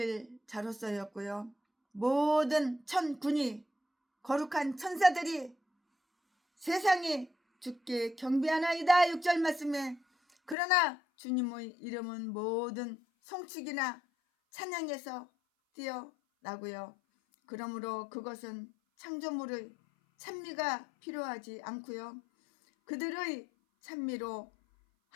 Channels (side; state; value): right; drops out; at 10.6 s